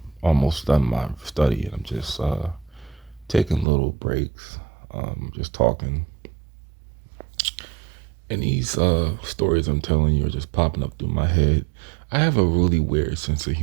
almost done my study, I'm just taking little breaks, just talking. And these stories I'm telling you are just popping up through my head. I have a really weird sense of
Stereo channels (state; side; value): drops out; left; at 3.7 s